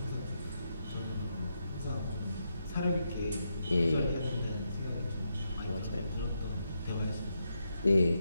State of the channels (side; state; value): both; inverted; correlation -0.83